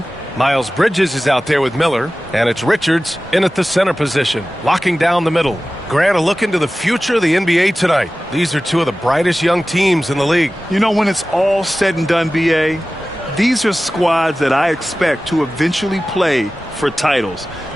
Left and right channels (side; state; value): both; normal; correlation 0.96